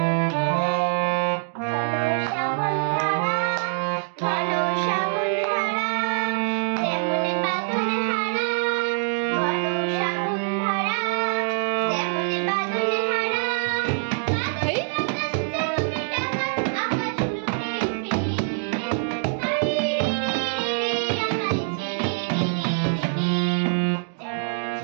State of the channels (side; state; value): left; silent; digital silence